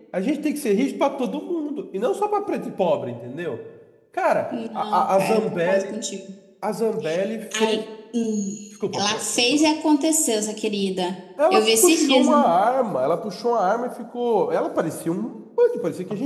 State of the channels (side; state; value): both; identical; correlation 1.00